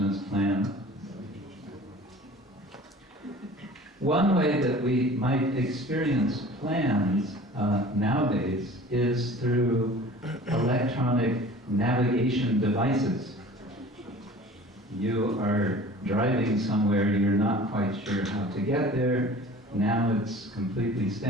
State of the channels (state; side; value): normal; both; correlation 0.44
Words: plan. One way that we might experience plans nowadays is through electronic navigation devices. You are driving somewhere, you're not quite sure how to get there. Now it's completely